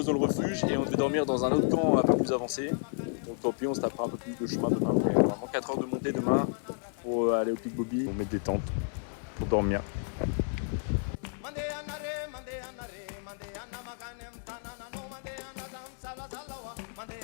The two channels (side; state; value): right; silent; 57 dB below the other